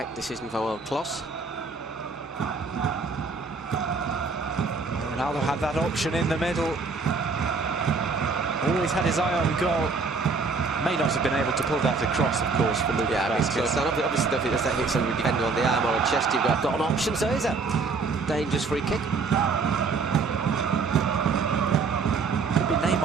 decision from World Kloss. Ronaldo had that option in the middle. Always had his eye on goal. May not have been able to pull that across, of course, for Lucas Vázquez. Obviously, if that hits somebody defender on the arm or a chest, you've got an option. So is a dangerous free kick. Could be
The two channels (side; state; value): left; quieter; 4.4 dB